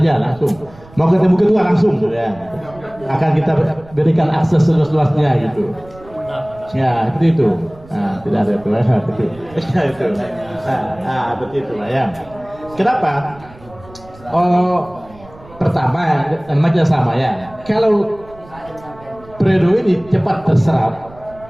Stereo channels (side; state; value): right; noise; rumble, 22 dB below the sound